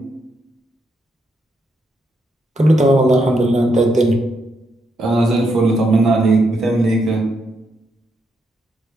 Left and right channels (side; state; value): both; normal; correlation 0.79